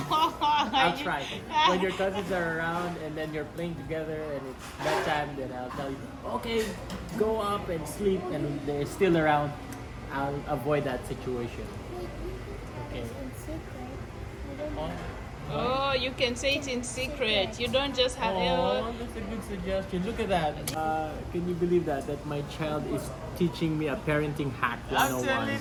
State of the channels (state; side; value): identical; both; correlation 1.00